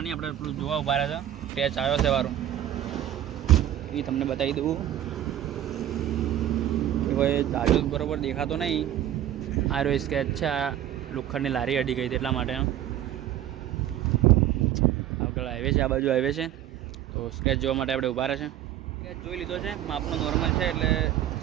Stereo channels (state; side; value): quieter; left; 11.7 dB